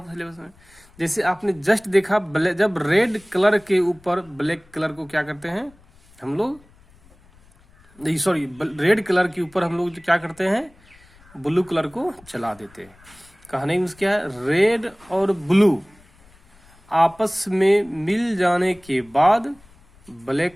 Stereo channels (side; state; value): left; noise; rumble, 28 dB below the sound